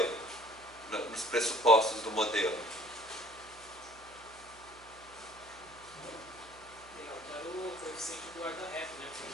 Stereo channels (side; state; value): right; noise; hum, 23 dB below the sound